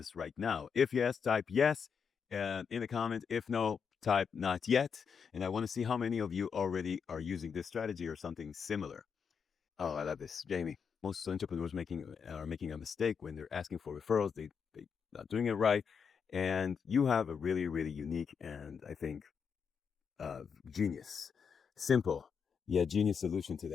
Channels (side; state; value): right; quieter; 6.4 dB